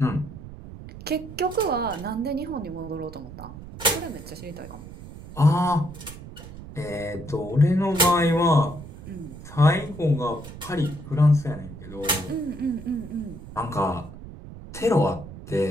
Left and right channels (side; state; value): right; noise; rumble, 14 dB below the sound